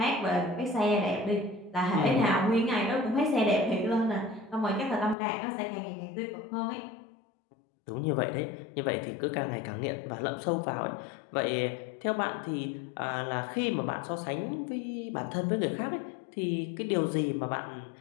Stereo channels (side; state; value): right; drops out; at 5.2 s